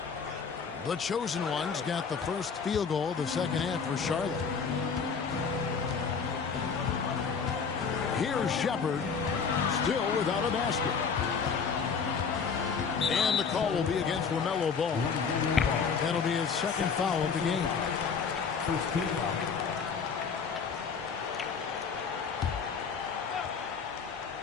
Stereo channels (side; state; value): right; quieter; 5.9 dB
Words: The chosen one's got the first field goal of the second half for Charlotte. Here's Shepard, still without a basket. And the call will be against LaMelo Ball. That'll be his second foul of the game.